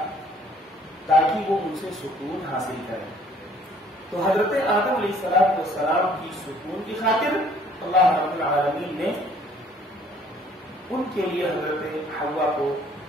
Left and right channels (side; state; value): both; normal; correlation 0.58